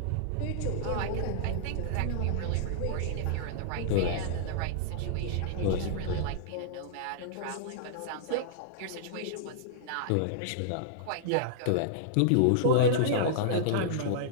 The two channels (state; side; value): different; both; correlation -0.02